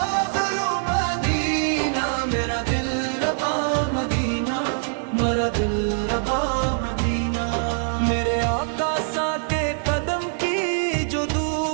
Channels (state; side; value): silent; left; digital silence